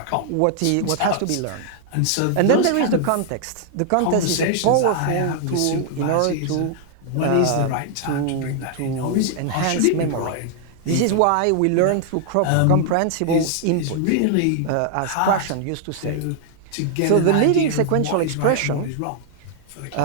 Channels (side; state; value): both; different; correlation 0.00